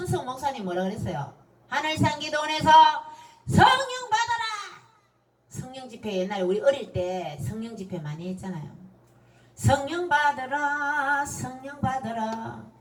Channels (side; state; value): both; identical; correlation 1.00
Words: 목사님 뭐라 그랬어요? 하늘산 기도원에서 성령 받아라. 성령 집회 옛날에 우리 어릴 때 성령 집회 많이 했잖아요. 성령 받으라 성령 받으라